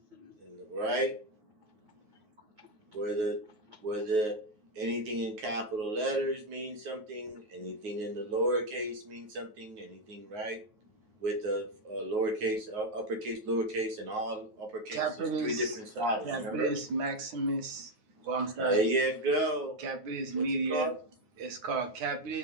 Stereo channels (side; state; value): left; late; 9.3 ms